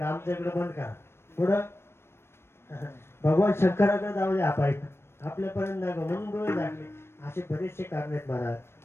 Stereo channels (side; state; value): right; late; 0.12 ms